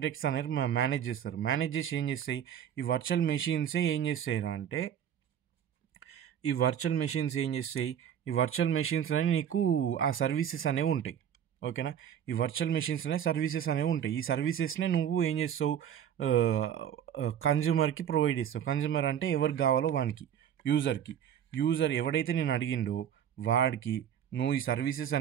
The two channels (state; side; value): quieter; left; 9.4 dB